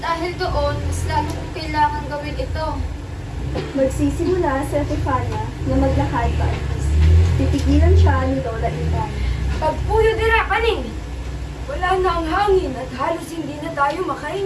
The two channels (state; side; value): identical; both; correlation 1.00